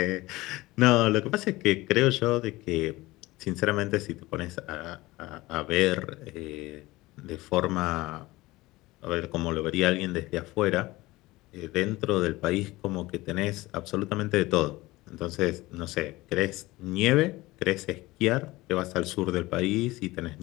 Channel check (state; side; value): quieter; right; 19.8 dB